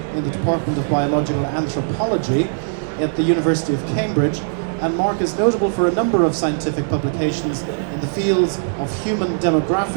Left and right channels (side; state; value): left; silent; digital silence